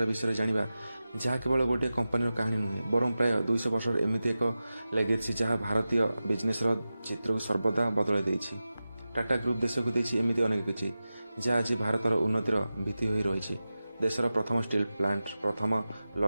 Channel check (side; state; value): both; inverted; correlation -0.94